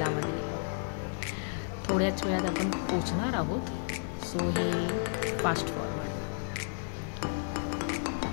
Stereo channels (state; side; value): silent; right; digital silence